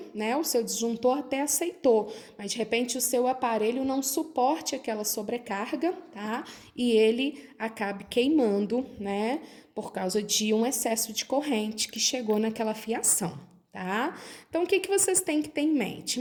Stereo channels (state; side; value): identical; both; correlation 1.00